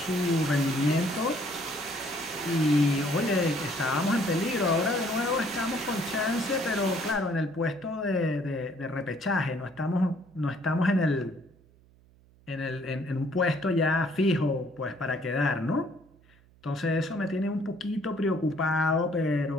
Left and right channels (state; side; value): noise; right; hum, 29 dB below the sound